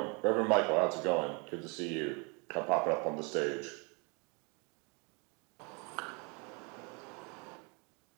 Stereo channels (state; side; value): quieter; left; 32.2 dB